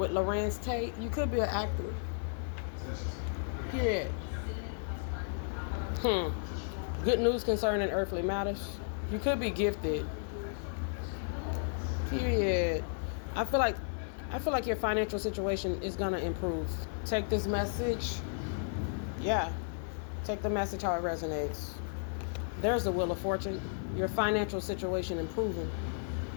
Larenz Tate. You could be an actor. Period. Good news concerning earthly matters. You could be gifted. Period. I feel like your financial situation is gonna improve. Take this message. Yeah. Take the message how it resonates. There's the Wheel of Fortune. Your financial situation improving.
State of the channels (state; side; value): silent; right; 55 dB below the other